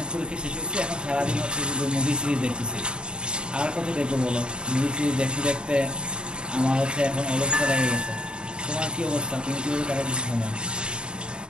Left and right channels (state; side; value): late; left; 0.051 ms